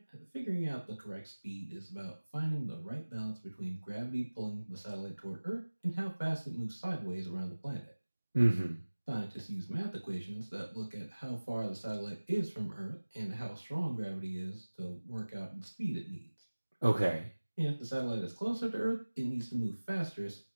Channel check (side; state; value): both; inverted; correlation -1.00